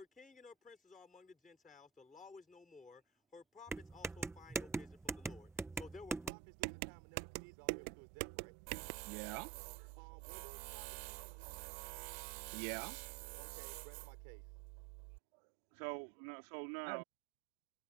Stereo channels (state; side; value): drops out; left; at 6.3 s